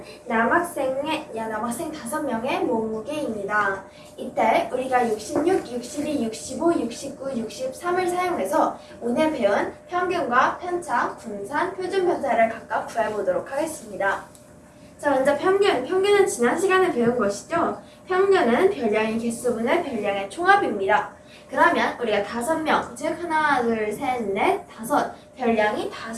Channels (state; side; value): identical; both; correlation 1.00